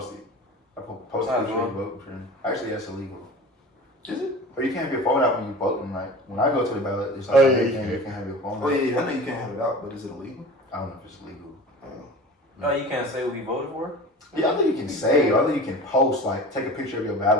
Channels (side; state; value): both; normal; correlation 0.37